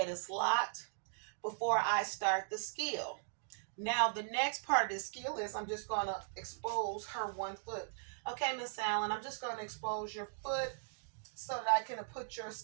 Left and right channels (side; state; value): left; silent; digital silence